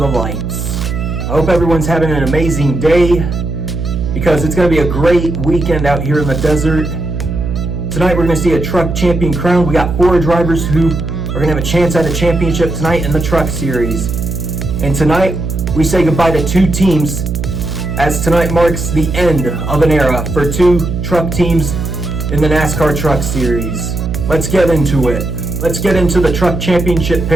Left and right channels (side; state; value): right; noise; hum, 4 dB below the sound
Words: lights. I hope everyone's having an amazing day, because it's going to be a great weekend out here in the desert. Tonight we're going to see a truck champion crowned. We got 4 drivers who are going to have a chance at a championship tonight in the truck series. And tonight, we say goodbye to 2 teams, as tonight marks the end of an era for 2 truck teams in the NASCAR Truck Series. Let's get into it. Let's get into the truck championship